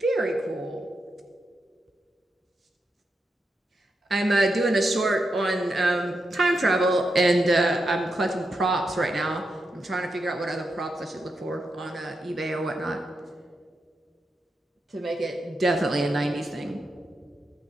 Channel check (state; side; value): normal; both; correlation 0.86